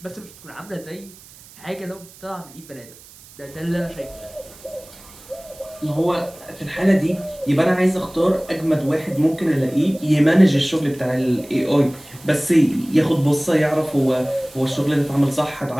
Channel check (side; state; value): right; noise; hiss, 22 dB below the sound